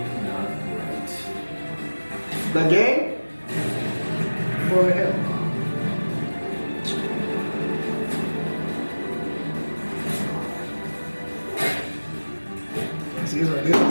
not right. The game? Boy, hell. See,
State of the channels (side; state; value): both; inverted; correlation -1.00